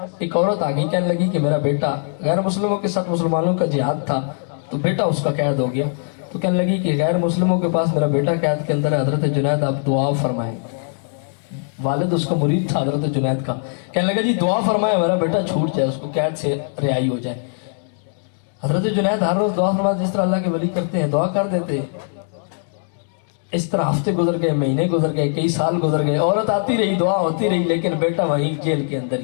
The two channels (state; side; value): silent; right; digital silence